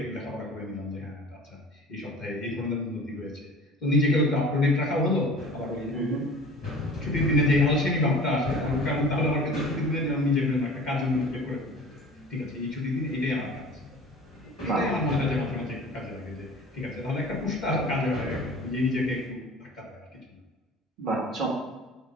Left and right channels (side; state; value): both; normal; correlation 0.43